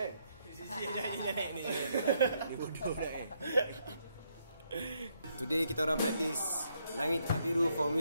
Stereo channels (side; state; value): both; inverted; correlation -0.75